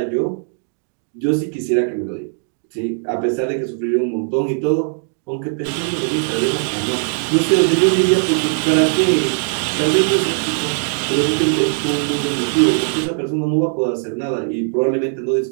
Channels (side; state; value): left; silent; 66 dB below the other